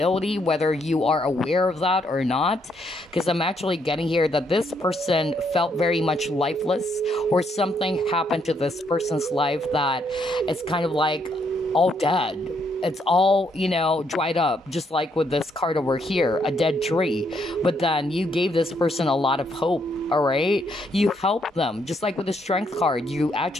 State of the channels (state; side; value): normal; both; correlation 0.73